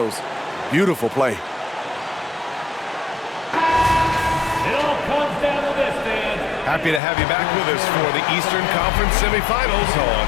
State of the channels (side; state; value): right; drops out; at 7.0 s